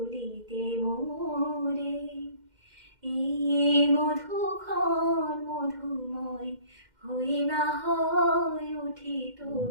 মোরে। এই মধুক্ষণ মধুময় হয়ে না হয় উঠিত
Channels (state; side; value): late; left; 2.1 ms